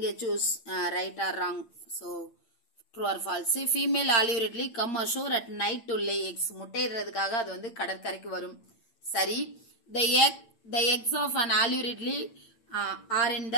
choose right or wrong. So true or false. Female olive ridley come ashore at night to lay eggs, முட்டையிடுறதுக்காக அது வந்து கடற்கரைக்கு வரும். சரி. The eggs of an olive ridley are in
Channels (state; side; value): late; right; 8.8 ms